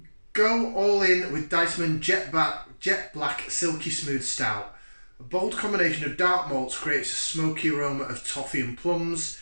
go all in with Diceman Jet Black Silky Smooth Stout. A bold combination of dark malts creates a smoky aroma of toffee and plums.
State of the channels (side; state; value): both; inverted; correlation -1.00